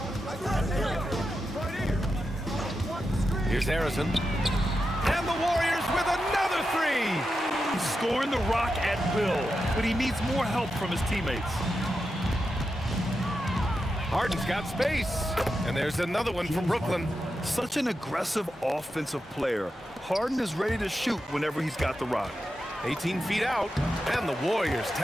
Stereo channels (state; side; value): normal; both; correlation 0.89